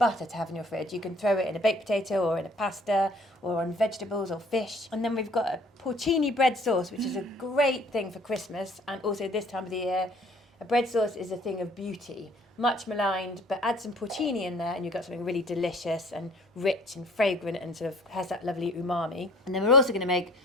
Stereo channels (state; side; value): normal; both; correlation 0.54